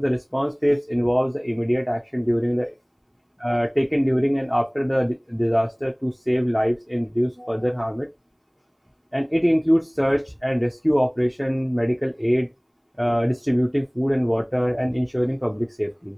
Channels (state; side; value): identical; both; correlation 1.00